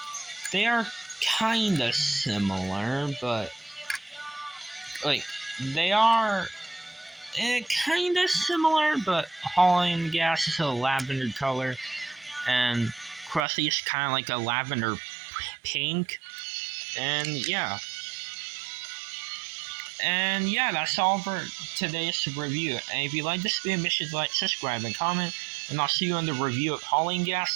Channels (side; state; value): left; drops out; at 13.5 s